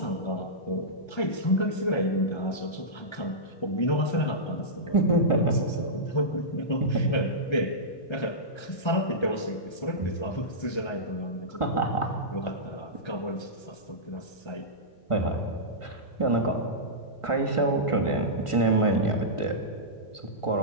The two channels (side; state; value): right; late; 1.3 ms